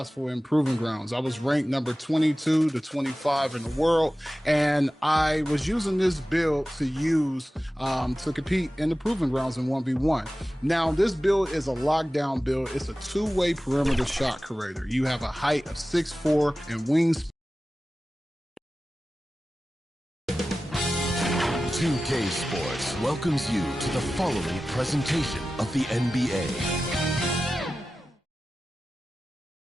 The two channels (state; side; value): normal; both; correlation 0.95